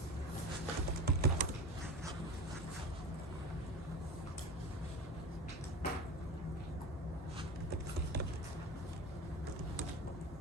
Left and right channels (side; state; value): both; normal; correlation 0.30